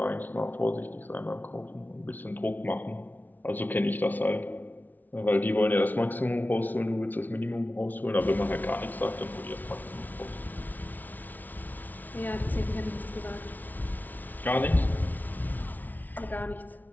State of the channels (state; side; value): late; right; 0.081 ms